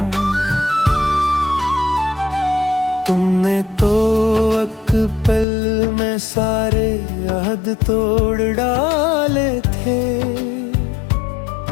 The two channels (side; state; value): right; drops out; at 5.5 s